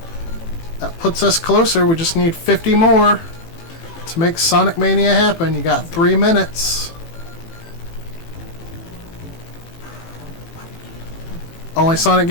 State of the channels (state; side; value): late; right; 18 ms